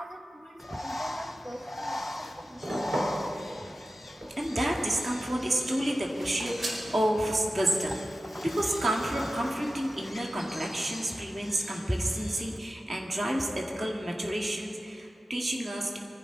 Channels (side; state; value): both; normal; correlation 0.93